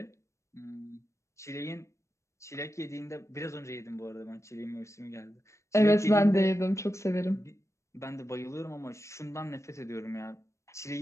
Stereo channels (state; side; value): late; right; 0.14 ms